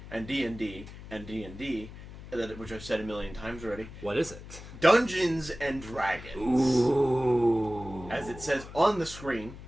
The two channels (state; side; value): noise; left; hum, 14 dB below the sound